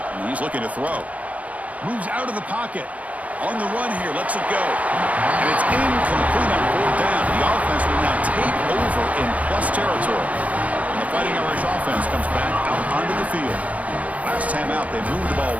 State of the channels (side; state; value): left; late; 0.069 ms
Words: and he's looking to throw. Moves out of the pocket. On the run here, lets it go. And it's incomplete on 4th down. The offense will now take over in plus territory. And the Fighting Irish offense comes back out onto the field. Last time out, they moved the ball